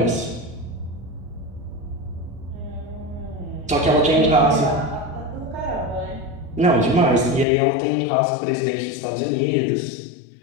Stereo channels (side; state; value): right; drops out; at 7.5 s